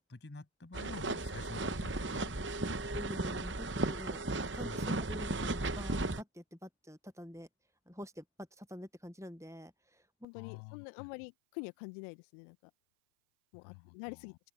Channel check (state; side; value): drops out; right; at 10.2 s